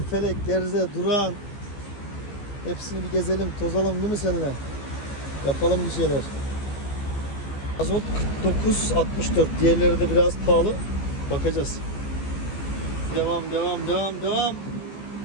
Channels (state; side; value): late; right; 15 ms